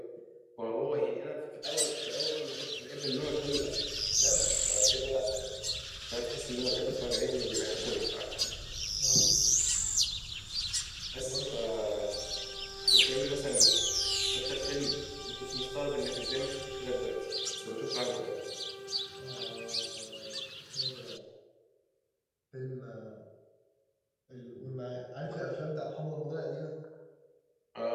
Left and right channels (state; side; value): identical; both; correlation 1.00